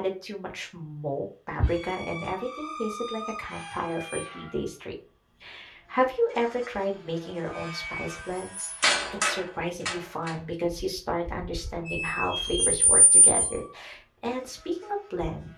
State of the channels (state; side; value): identical; both; correlation 1.00